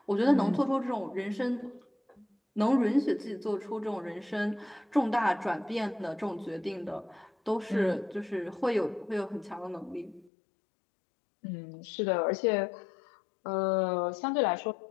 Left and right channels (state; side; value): drops out; right; at 10.3 s